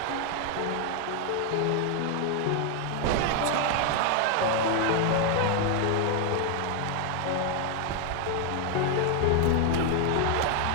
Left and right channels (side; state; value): both; different; correlation 0.01